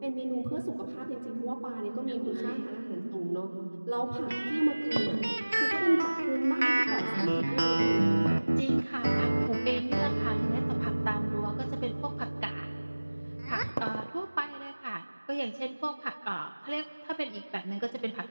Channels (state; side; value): inverted; both; correlation -1.00